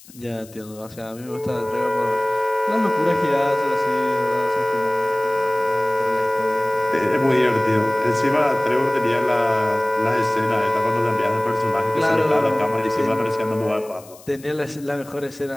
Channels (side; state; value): left; noise; hiss, 22 dB below the sound